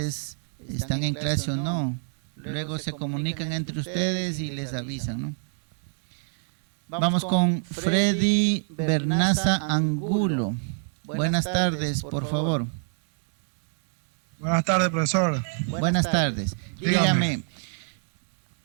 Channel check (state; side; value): silent; left; digital silence